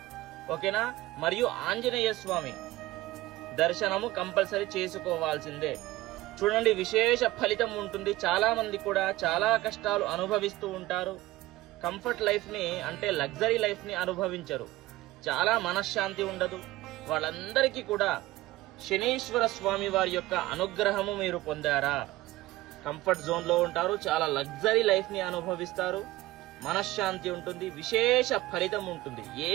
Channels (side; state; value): left; quieter; 17.5 dB